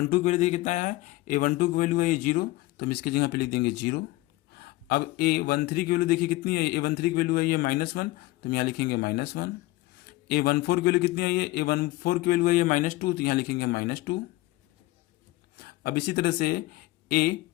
की वैल्यू देखिए कितना है, A12 की वैल्यू है ये 0, तो हम इसकी जगह पे लिख देंगे 0। अब A13 की वैल्यू देखिए कितनी है, A13 की वैल्यू है ये -1, तो हम यहाँ लिखेंगे -1। A14 की वैल्यू कितनी है, ये A14 की वैल्यू है ये -2, तो यहाँ लिखेंगे -2। अब इसी तरह से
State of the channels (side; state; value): right; quieter; 19.0 dB